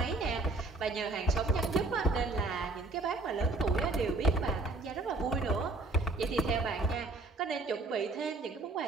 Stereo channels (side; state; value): left; quieter; 3.2 dB